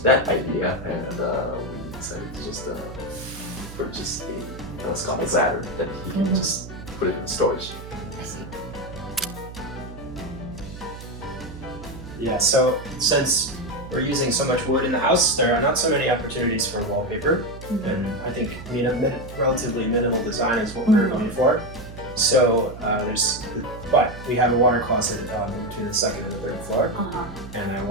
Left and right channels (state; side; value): noise; right; hum, 13 dB below the sound